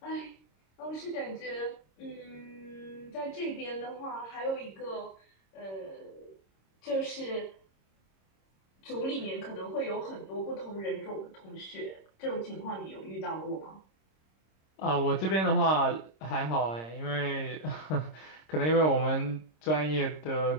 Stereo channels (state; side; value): late; right; 26 ms